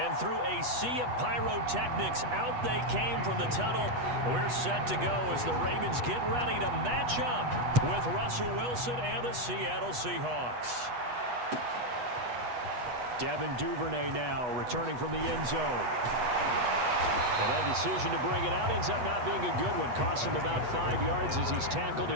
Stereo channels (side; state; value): left; late; 8.2 ms